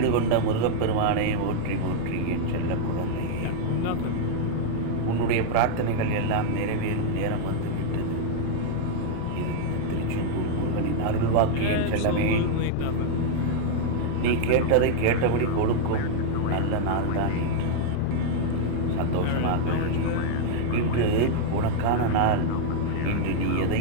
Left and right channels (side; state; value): both; different; correlation -0.01